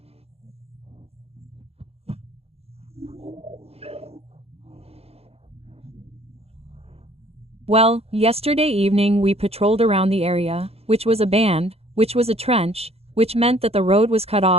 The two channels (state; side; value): late; left; 0.29 ms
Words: Well, yesterday evening we patrolled around the area, which was a band, which was a trench, which meant that the road was cut